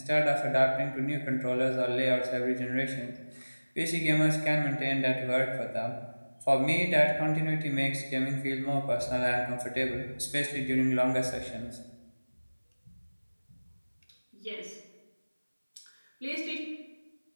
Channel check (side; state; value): both; inverted; correlation -1.00